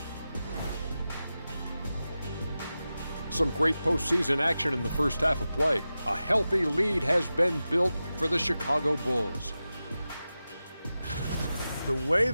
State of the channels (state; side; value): inverted; both; correlation -0.93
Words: Some great postseason action in the first half of play. A healthy lead has been built for the Chicago Bulls. The way